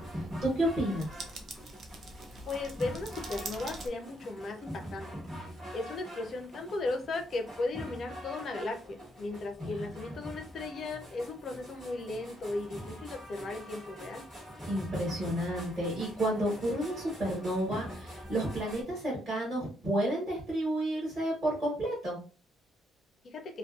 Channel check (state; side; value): normal; both; correlation 0.74